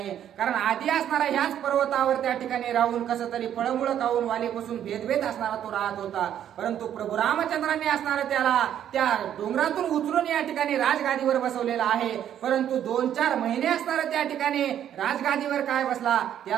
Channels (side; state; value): left; quieter; 10.3 dB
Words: कारण आधी असणारा ह्याच पर्वतावर त्या ठिकाणी राहून कसं तरी फळमुळं खाऊन वालीपासून भेदभेद असणारा तो राहत होता. परंतु प्रभू रामचंद्रांनी असणारं त्याला त्या डोंगरातून उचलून या ठिकाणी राजगादीवर बसवलेला आहे. परंतु 2-4 महिने असणारं त्या ठिकाणी राजगादीवर काय बसला,